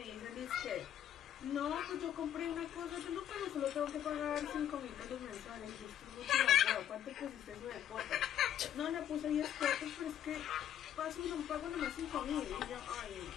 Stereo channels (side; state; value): right; quieter; 10.6 dB